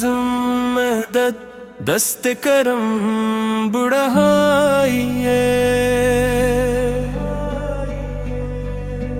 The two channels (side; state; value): both; identical; correlation 1.00